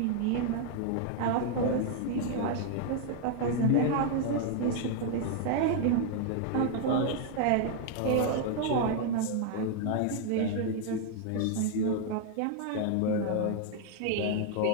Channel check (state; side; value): different; both; correlation 0.00